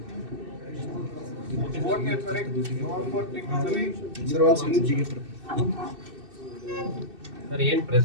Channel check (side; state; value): left; late; 2.6 ms